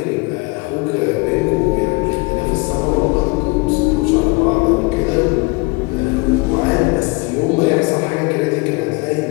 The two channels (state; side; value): quieter; right; 27.5 dB